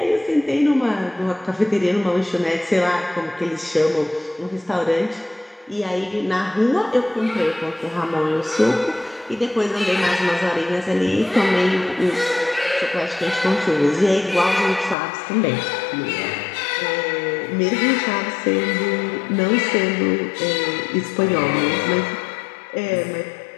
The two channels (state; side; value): drops out; right; at 15.0 s